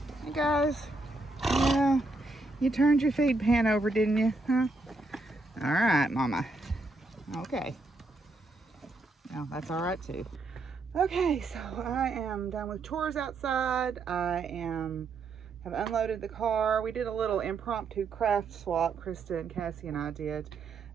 Hey guys. Yeah. You turned your feed pan over, didn't you? Huh? All right, Mama. Okay. No, that's all right too. Okay, so I am done with chores outside. have unloaded the car. We did a little impromptu craft swap. Krista and Cassie and I did.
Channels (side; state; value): left; quieter; 3.3 dB